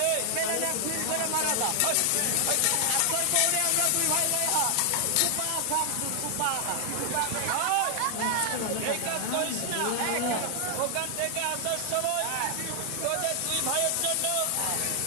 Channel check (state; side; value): different; both; correlation 0.00